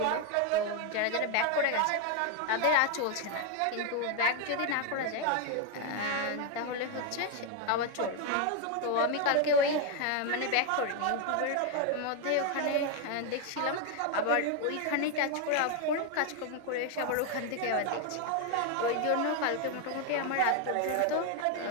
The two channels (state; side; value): different; both; correlation 0.01